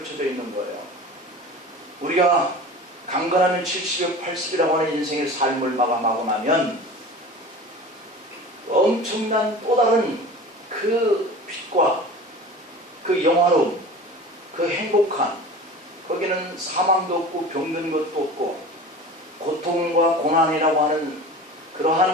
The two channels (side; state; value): both; normal; correlation 0.37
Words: 있는 거예요. 우리가 강건하면 70여 80이라고 하는 인생의 삶을 마감하고 나면 엄청난 또 다른 그 빛과 그 영화로움, 그 행복한, 거기는 사망도 없고 병든 것도 없고 고통과 고난이라고 하는